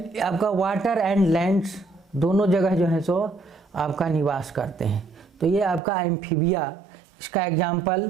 वाटर एंड लैंड्स दोनों जगह जो है सो आपका निवास करते हैं। तो ये आपका एम्फीबिया, इसका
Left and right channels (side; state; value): left; drops out; at 5.8 s